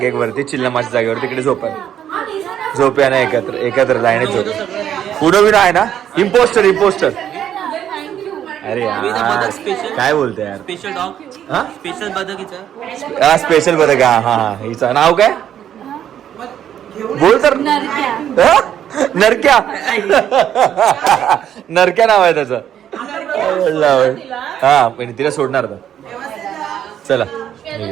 एक वरती चिल्लमाच्या जागेवर, तिकडे झोपूया ना एकत्र लाईनीत झोप. पुढं बिना आहे ना. इम्पोस्टर अरे यार काय बोलतोय यार. स्पेशल डॉग, हा स्पेशल बदकीचं. हा स्पेशल बदक. हा हिचं नाव काय बोल तर. हा? नरक्या नरक्या नाव आहे त्याचं. हा पण तिला सोडणार आता. चला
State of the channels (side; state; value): left; quieter; 10.0 dB